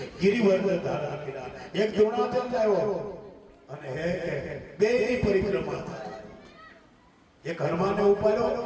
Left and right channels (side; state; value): both; identical; correlation 1.00